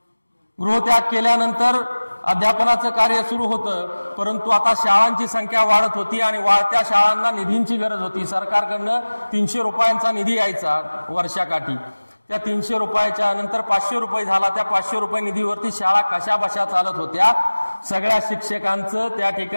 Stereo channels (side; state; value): both; inverted; correlation -1.00